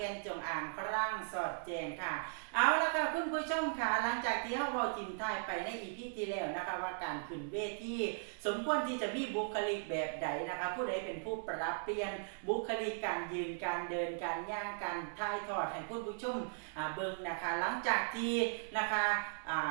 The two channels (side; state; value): left; silent; digital silence